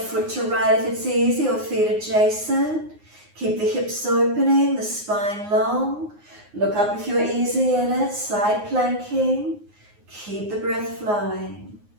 foot to right if it's easy, or feet adjacent. Keep the hips opening, the spine long. Look up if you're easy in it, side planking. Keep the breath flowing.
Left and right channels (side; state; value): left; late; 9.6 ms